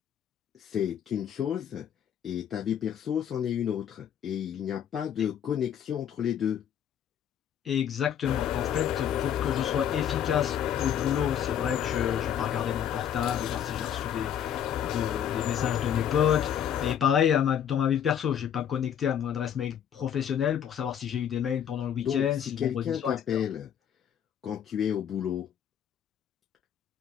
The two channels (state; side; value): quieter; right; 9.2 dB